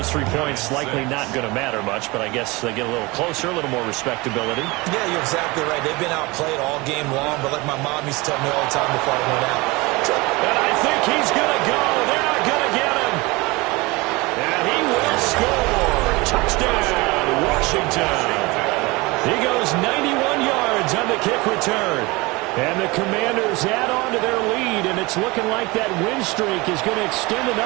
3 points likely not going to matter much, but I guess they get a little closer, a little more respectability. Yeah, you're exactly right. They've been outplayed all game long, but like my mom used to tell me all the time before I went out. And I think he's going to go. They're not going to get him. And he will score. Touchdown, Washington. He goes 91 yards on the kick return. And the Commanders add on to their lead, and it's looking like that win streak is going to extend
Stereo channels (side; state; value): left; quieter; 23.9 dB